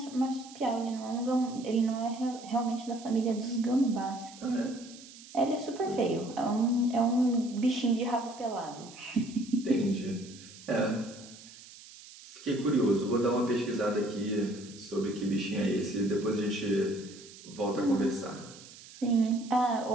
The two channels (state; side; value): noise; right; hiss, 18 dB below the sound